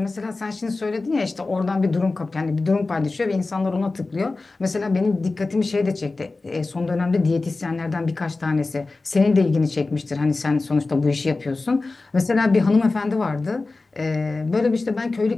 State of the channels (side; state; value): right; quieter; 3.5 dB